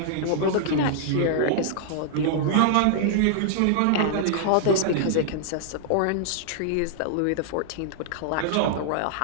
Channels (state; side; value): different; both; correlation -0.01